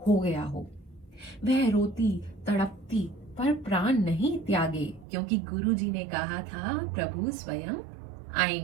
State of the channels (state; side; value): drops out; left; at 5.1 s